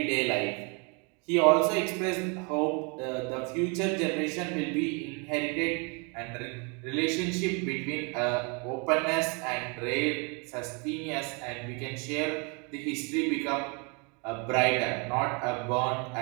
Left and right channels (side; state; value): left; quieter; 33.1 dB